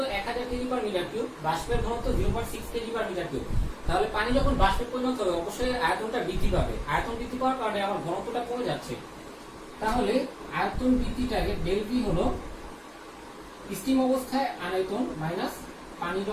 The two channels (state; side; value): identical; both; correlation 1.00